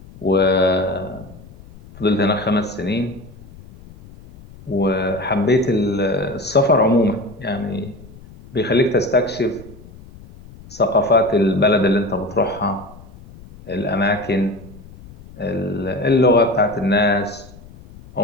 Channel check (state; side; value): noise; left; rumble, 20 dB below the sound